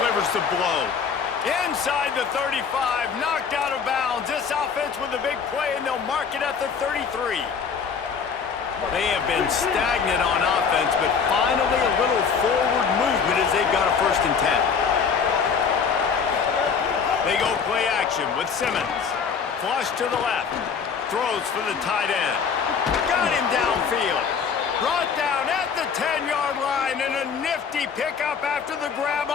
the blow. Inside the 35, knocked out of bounds. This offense with a big play, and they'll mark it at the 33. They have been stagnant on offense, but finally a little forward movement as they've got a 1st and 10. They go play action with Simmons. Flush to the left. Throws for the tight end. Got him downfield. Brought down at the 10-yard line, and a nifty pickup after the grab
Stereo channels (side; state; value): right; quieter; 6.2 dB